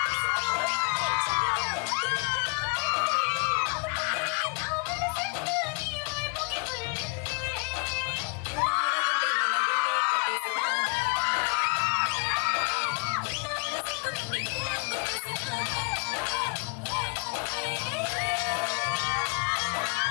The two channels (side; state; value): right; quieter; 35.8 dB